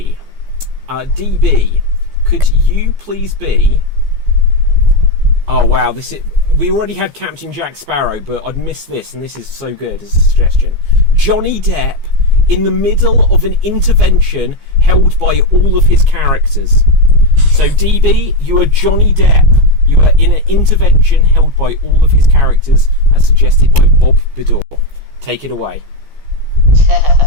DB, could you please be... Oh wow, we already had Captain Jack Sparrow, but I'd missed this, and this is so good as a suggestion. Johnny Depp in the middle of an intervention held by all of his characters. So DB, you are Johnny Depp. You are in an intervention held by all of his characters, as suggested by Bob Bidor. Take it away.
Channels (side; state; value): left; late; 15 ms